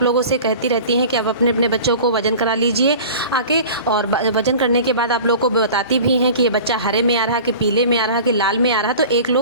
लोगों से कहती रहती हैं कि आप अपने अपने बच्चों को वजन करा लीजिए आके। और वजन करने के बाद आप लोग को बताती भी हैं कि ये बच्चा हरे में आ रहा है कि पीले में आ रहा है कि लाल में आ रहा है।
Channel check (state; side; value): inverted; both; correlation -0.39